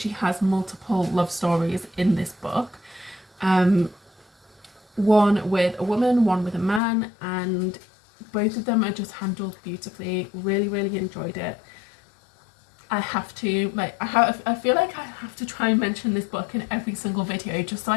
has multiple love stories in this book. One with a woman, one with a man, and both of them are just handled beautifully. Really enjoyed it. I have to, like, I feel like I have to try and mention this book in every single video just so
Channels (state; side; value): drops out; right; at 6.8 s